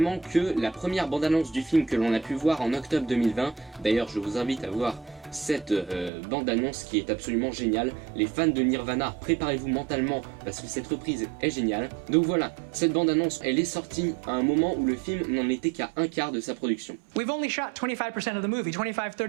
que la première bande-annonce du film que l'on a pu voir en octobre 2020, d'ailleurs je vous invite à voir cette bande-annonce qui est absolument géniale. Les fans de Nirvana, préparez-vous mentalement parce que cette reprise est géniale. Donc voilà, cette bande-annonce, elle est sortie à un moment où le film n'en était qu'à un quart de sa production. We've only shot 25% of the movie,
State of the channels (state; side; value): drops out; left; at 6.1 s